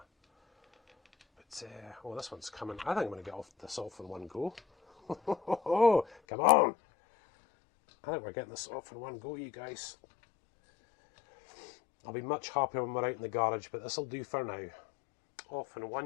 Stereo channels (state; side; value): drops out; right; at 6.2 s